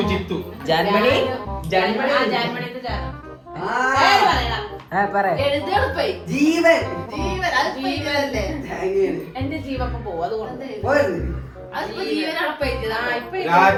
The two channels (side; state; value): both; identical; correlation 1.00